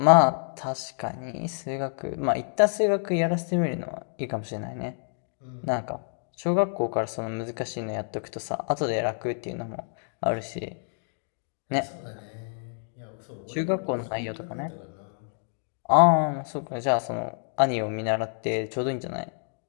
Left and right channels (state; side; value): silent; right; digital silence